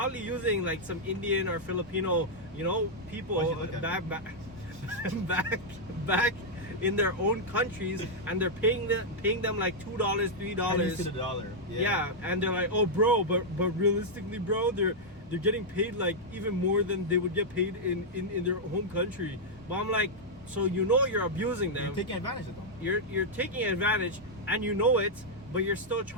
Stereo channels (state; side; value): normal; both; correlation -0.05